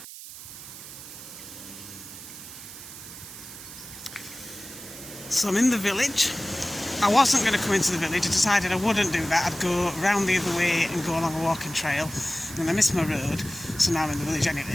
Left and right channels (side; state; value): right; noise; hiss, 13 dB below the sound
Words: So I'm in the village. I wasn't going to come into the village. I decided I wouldn't do that. I'd go round the other way and go along a walking trail. And I missed my road, so now I'm in the village